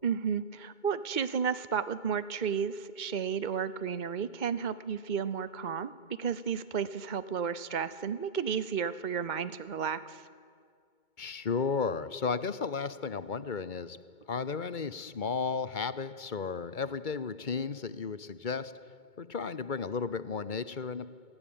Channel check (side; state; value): right; late; 2.2 ms